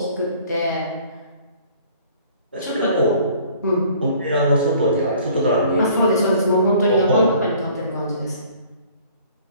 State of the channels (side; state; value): both; inverted; correlation -0.53